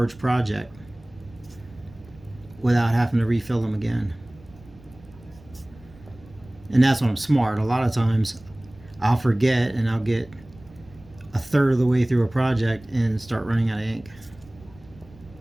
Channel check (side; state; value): right; noise; rumble, 23 dB below the sound